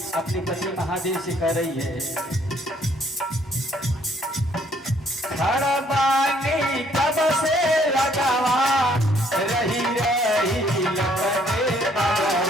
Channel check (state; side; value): normal; both; correlation 0.65